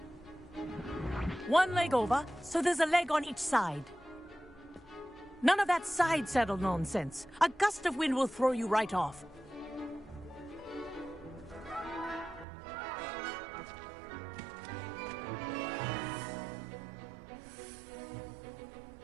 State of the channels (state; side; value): drops out; left; at 12.5 s